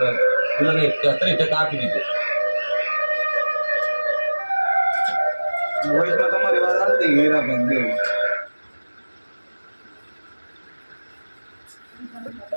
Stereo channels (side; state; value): both; inverted; correlation -1.00